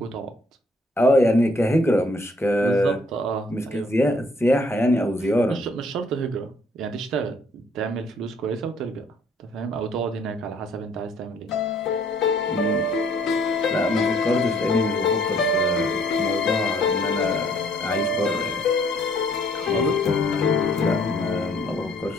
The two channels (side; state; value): both; normal; correlation 0.63